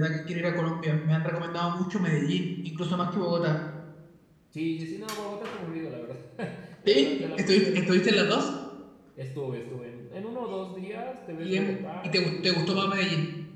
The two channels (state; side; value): identical; both; correlation 1.00